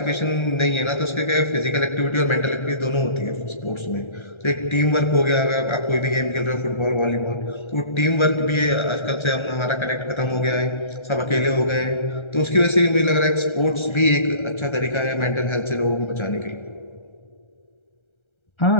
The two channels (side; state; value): right; late; 1.3 ms